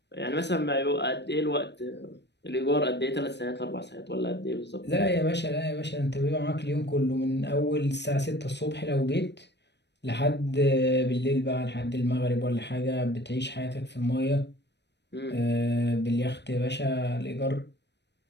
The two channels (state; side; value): late; right; 0.50 ms